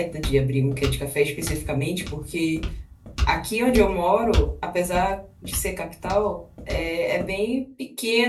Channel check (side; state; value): both; identical; correlation 1.00